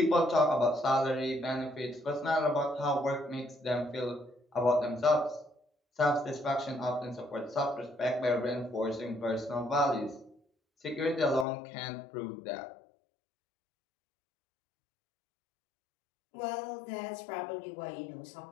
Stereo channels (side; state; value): right; drops out; at 11.5 s